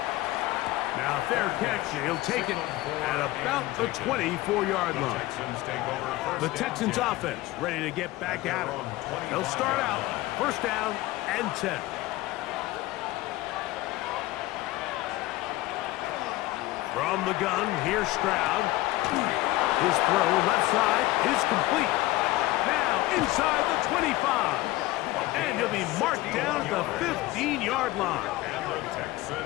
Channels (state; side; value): quieter; right; 18.0 dB